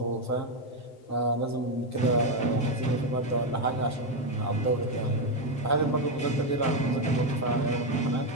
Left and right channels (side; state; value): right; late; 7.6 ms